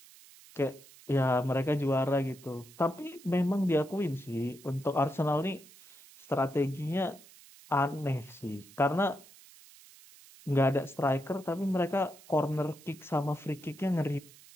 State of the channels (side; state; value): right; noise; hiss, 22 dB below the sound